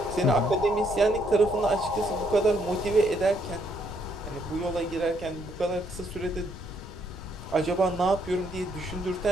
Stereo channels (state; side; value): noise; left; rumble, 13 dB below the sound